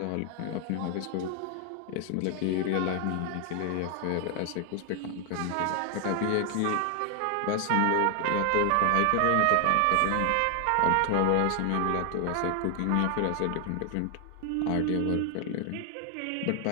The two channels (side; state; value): both; different; correlation 0.00